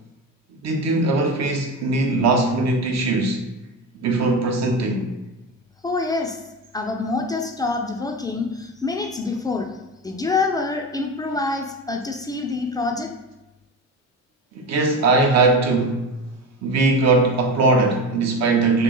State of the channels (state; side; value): normal; both; correlation 0.25